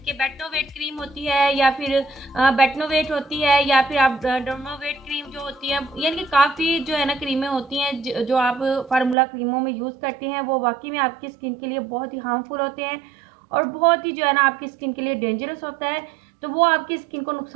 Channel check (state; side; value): drops out; left; at 9.2 s